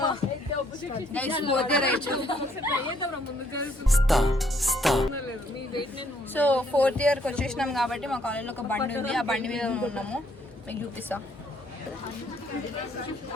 సో 4th ఇయర్కి వచ్చేసినాం కాబట్టి మా కాలేజ్లో ఒక బండి ఉంది ఆ బండి మీద ఉన్నాము మీకు చూపిస్తా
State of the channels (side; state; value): both; normal; correlation 0.68